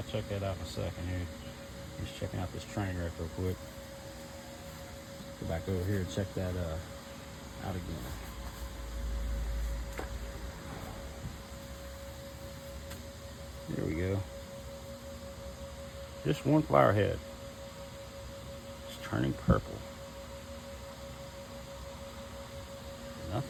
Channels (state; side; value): identical; both; correlation 1.00